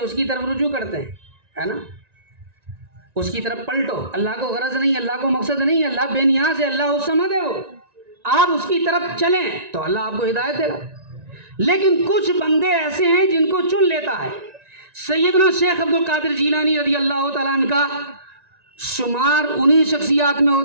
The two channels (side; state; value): left; late; 1.9 ms